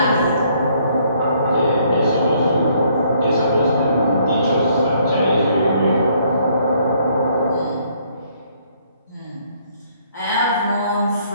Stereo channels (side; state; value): both; inverted; correlation -0.66